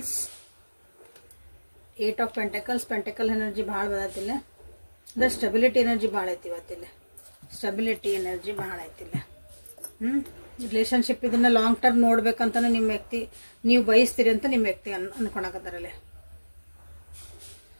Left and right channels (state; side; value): inverted; both; correlation -1.00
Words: 8 of pentacles. Pentacle energy ಭಾಳ ಬದತಿಲ್ಲ, ಅಂದ್ರೆ ಸ್ಟೆಬಿಲಿಟಿ ಎನರ್ಜಿ ಭಾಳ ಐತಿ ಇವತ್ತಿಲ್ಲ. ಸ್ಟೆಬಿಲಿಟಿ ಎನರ್ಜಿ ಭಾಳ ಐತಿಲ್ಲ. ರಿಲೇಶನ್ಶಿಪ್ ಇದನ್ನ ಲಾಂಗ್ ಟರ್ಮ್ ನೋಡ್ಬೇಕಂತಾನೆ ನಿಮ್ಮ ವ್ಯಕ್ತಿ ನೀವು ಬಯಸ್ತೀರಿ ಅಂತ ನಿಮ್ಮ ವ್ಯಕ್ತಿ ಅನ್ಕೊಳಕತ್ತಾರಲ್ಲೇ.